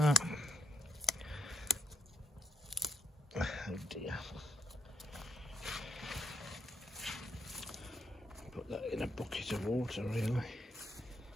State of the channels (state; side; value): normal; both; correlation 0.75